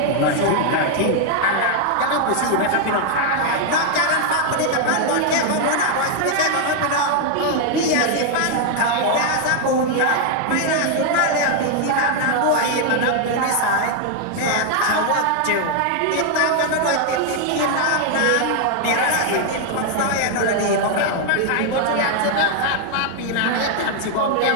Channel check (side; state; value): both; different; correlation 0.00